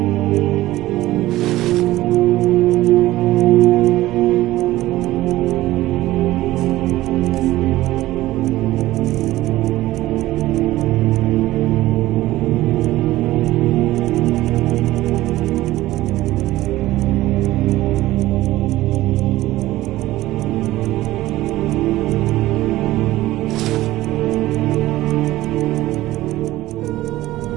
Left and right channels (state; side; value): quieter; left; 16.5 dB